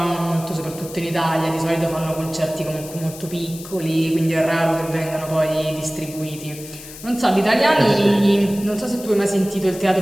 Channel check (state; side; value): noise; left; hiss, 15 dB below the sound